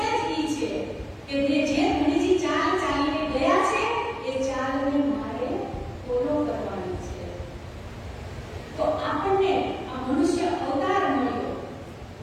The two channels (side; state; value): both; identical; correlation 1.00